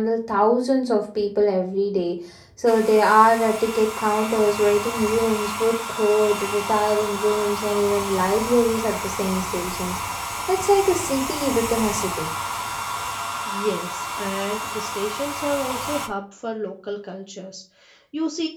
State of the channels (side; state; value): both; identical; correlation 1.00